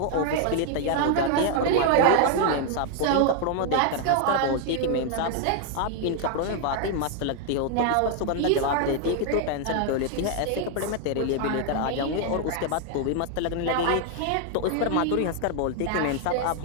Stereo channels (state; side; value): different; both; correlation 0.00